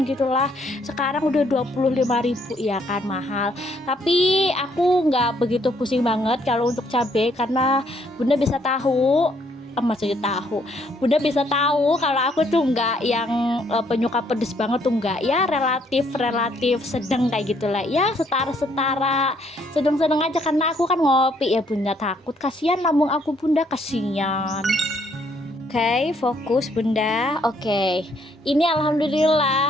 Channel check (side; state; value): both; normal; correlation 0.68